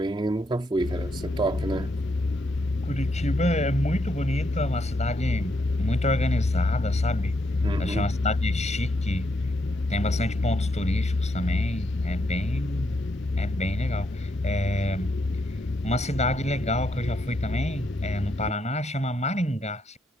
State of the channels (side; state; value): both; normal; correlation 0.78